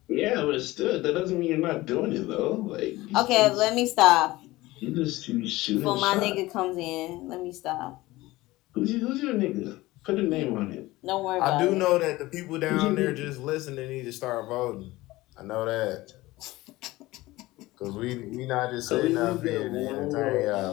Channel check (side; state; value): right; quieter; 18.9 dB